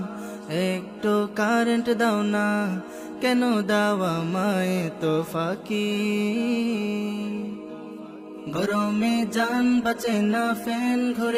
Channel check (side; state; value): both; identical; correlation 1.00